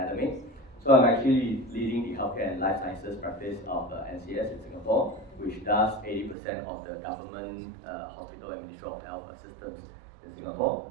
So I'm actually leading the healthcare and life sciences practice of NCS in Singapore, which does 80% of the government hospital and Ministry of Health systems in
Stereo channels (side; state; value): left; drops out; at 6.4 s